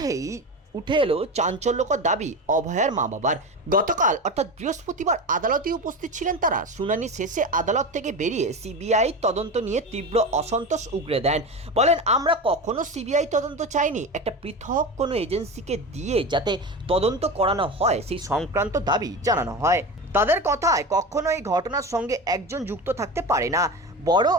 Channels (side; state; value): both; normal; correlation 0.25